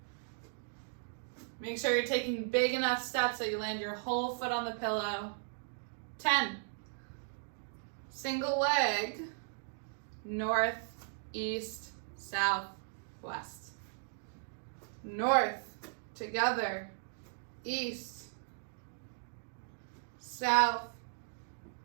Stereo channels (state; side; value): silent; left; digital silence